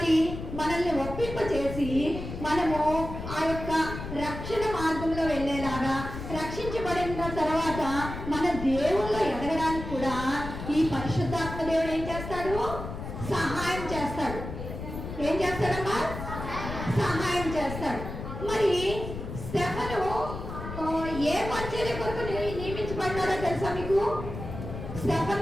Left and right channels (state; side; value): noise; left; rumble, 8 dB below the sound